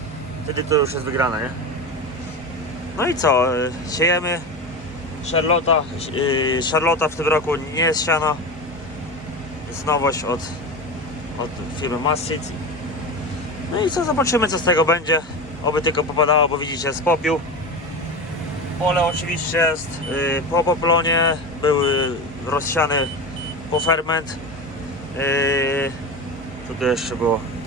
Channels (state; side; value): normal; both; correlation 0.24